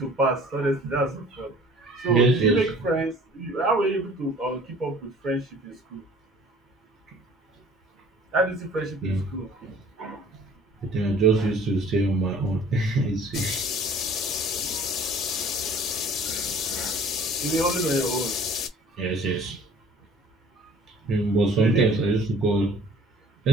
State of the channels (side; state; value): both; normal; correlation 0.51